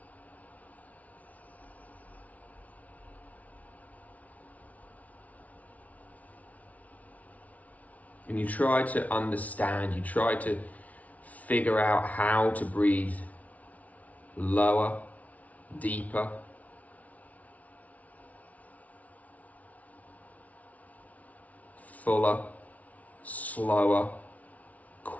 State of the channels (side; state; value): right; late; 0.070 ms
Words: And you try to understand, you try to figure out how to breathe lower, deeper, fuller, slower,